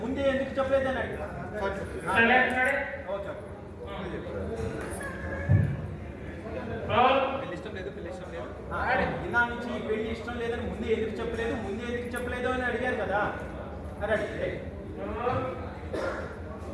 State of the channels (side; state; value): both; identical; correlation 1.00